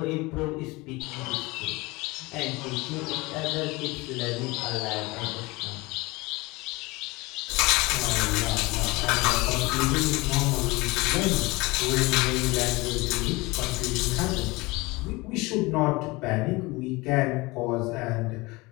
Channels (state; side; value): quieter; right; 23.3 dB